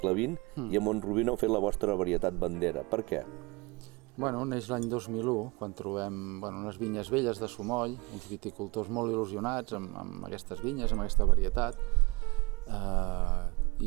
XX i a Mont-rubí no heu fet la vostra varietat bandera. Per què? Bueno, neix l'any 2001, quan trobem unes vinyes velles de Sumoll, uns viticultors molt il·lusionats amb aquestes vinyes, amb aquesta varietat,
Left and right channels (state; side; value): quieter; left; 25.6 dB